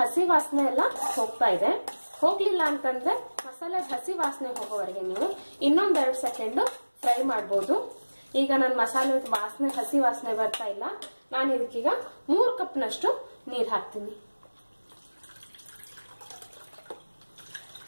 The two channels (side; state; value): both; inverted; correlation -1.00